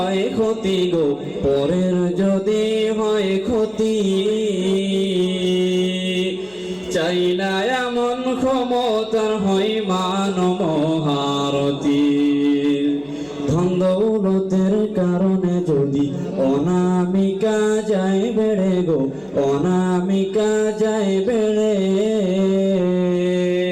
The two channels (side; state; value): left; noise; hum, 29 dB below the sound